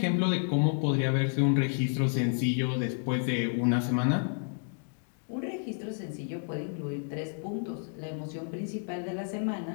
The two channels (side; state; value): right; silent; 57 dB below the other